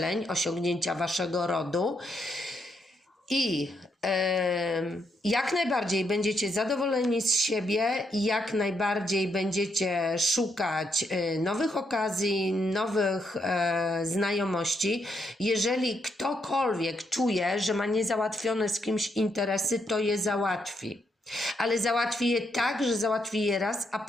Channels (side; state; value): both; normal; correlation 0.78